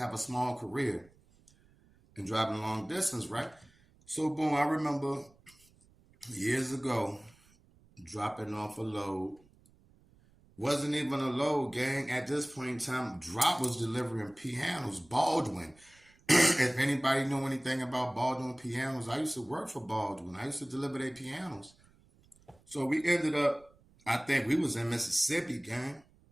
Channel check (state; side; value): noise; right; rumble, 29 dB below the sound